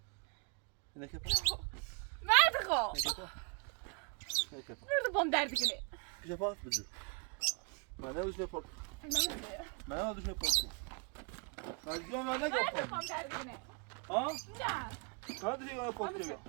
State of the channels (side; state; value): left; quieter; 30.5 dB